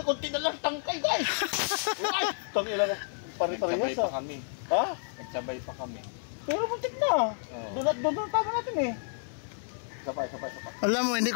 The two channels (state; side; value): silent; right; digital silence